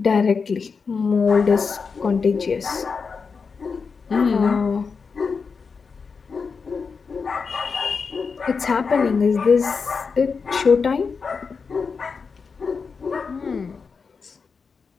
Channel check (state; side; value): quieter; right; 5.2 dB